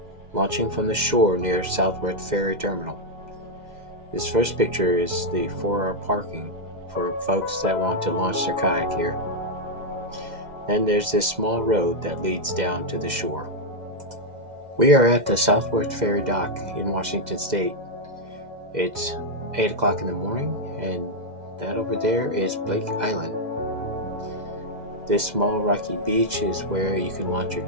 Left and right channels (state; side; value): late; left; 2.0 ms